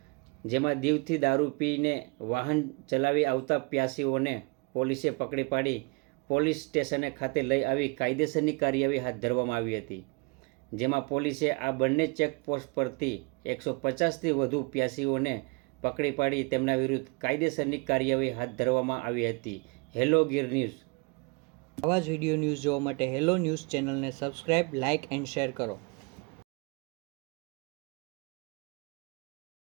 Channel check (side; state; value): left; quieter; 30.6 dB